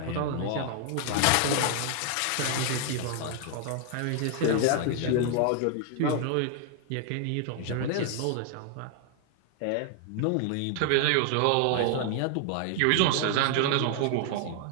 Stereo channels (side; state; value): both; different; correlation 0.00